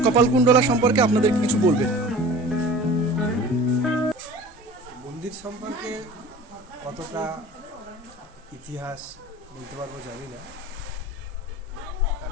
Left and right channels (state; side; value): normal; both; correlation 0.41